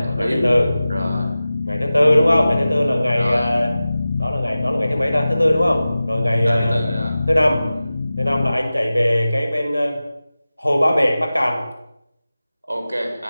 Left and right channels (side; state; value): both; inverted; correlation -0.95